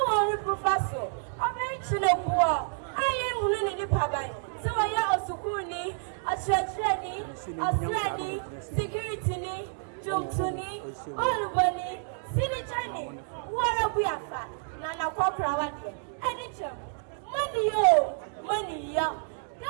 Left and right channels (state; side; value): silent; left; digital silence